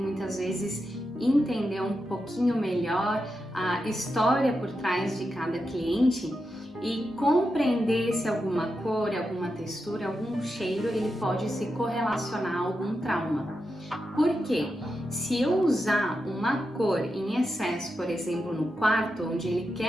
vezes entender um pouquinho melhor a história por trás de cada cliente e compreender se alguma cor, alguma textura, algum cheiro, ele pode se correlacionar a algum trauma. Por quê? Se eu usar uma cor em excesso, por exemplo, no quarto, onde ele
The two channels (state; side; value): normal; both; correlation 0.88